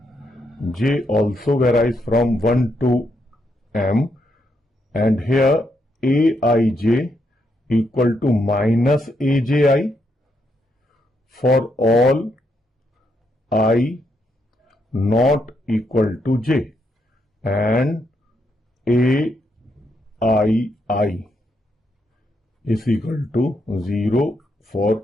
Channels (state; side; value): normal; both; correlation 0.79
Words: J also varies from 1 to m. And here Aij equal to minus Aj for all I not equal to j, and Aii is equal to 0 for